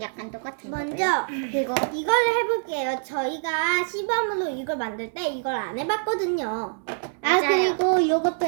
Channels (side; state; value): left; silent; digital silence